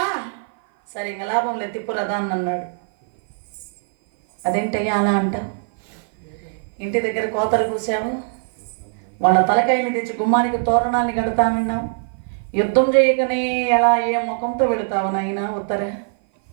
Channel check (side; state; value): left; silent; 56 dB below the other